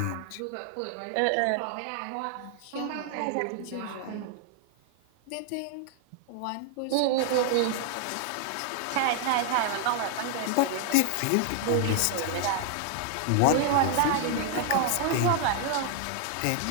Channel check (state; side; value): different; both; correlation 0.00